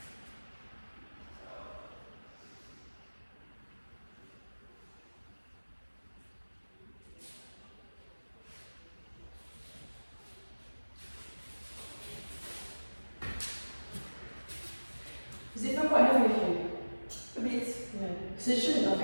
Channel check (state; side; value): inverted; both; correlation -1.00